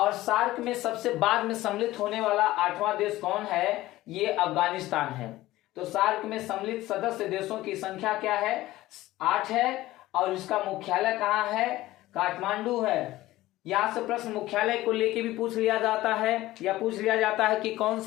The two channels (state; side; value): quieter; right; 16.7 dB